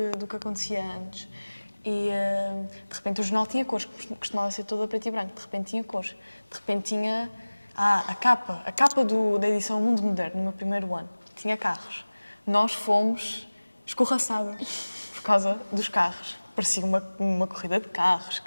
que acontecia antes. E, de repente, o jornal tinha cores, costumava ser todo a preto e branco. De repente tinha cores. De repente tinha... a capa da edição Mundo Moderno, no meu primeiro ano, tinha carros. Nós fomos escorraçados por causa dos carros. Parecia uma corrida de carros,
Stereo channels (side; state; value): both; inverted; correlation -1.00